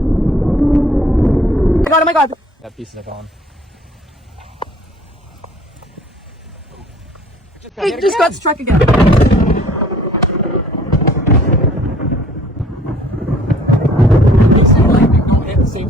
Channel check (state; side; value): normal; both; correlation 0.54